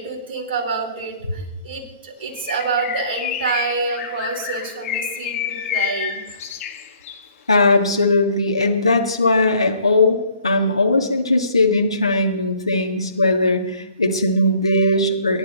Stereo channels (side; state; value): both; inverted; correlation -0.59